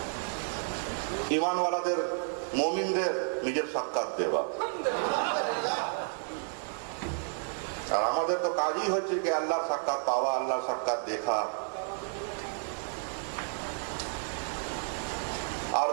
ঈমানওয়ালাদের, মুমিনদের নিজের সাক্ষাৎ দেওয়া। আর আমাদের তো কাজই হচ্ছে কি আল্লাহর সাক্ষাৎ পাওয়া, আল্লাহর সাক্ষাৎ দেখা।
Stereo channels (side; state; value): left; silent; 57 dB below the other